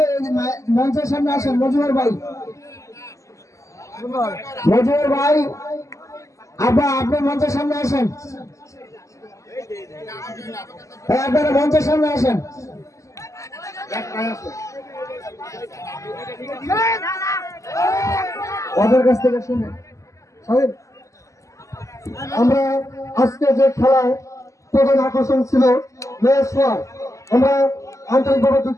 মঞ্চের সামনে আসেন। মজুমদার ভাই, মজুমদার ভাই আপনি মঞ্চের সামনে আসেন, আপনারা মঞ্চের সামনে আসেন। ওদের কাছ থেকে শুনে আমরা আজকে যে খেলায় প্রধান আকর্ষণ ছিল মেয়ের সোয়ার, আমরা আন্তরিকভাবে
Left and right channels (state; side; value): late; right; 0.15 ms